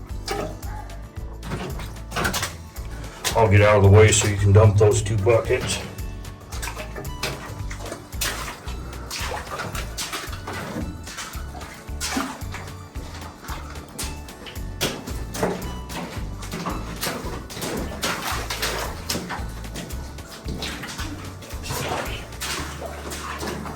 I'll get out of the way so you can dump those 2 buckets.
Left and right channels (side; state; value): both; identical; correlation 1.00